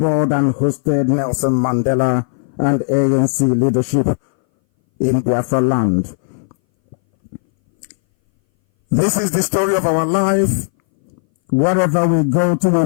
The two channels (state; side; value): silent; right; 62 dB below the other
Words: and hosted Nelson Mandela and ANC leadership in Biafra land. This is the story of our life. Wherever we go to, we